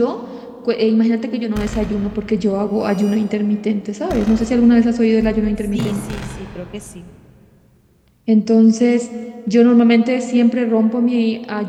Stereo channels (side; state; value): both; identical; correlation 1.00